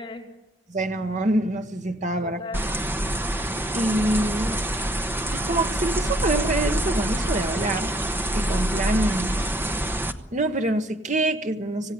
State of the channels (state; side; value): normal; both; correlation 0.63